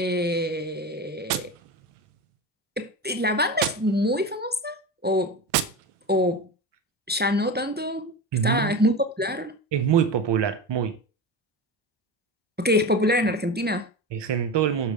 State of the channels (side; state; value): both; normal; correlation 0.25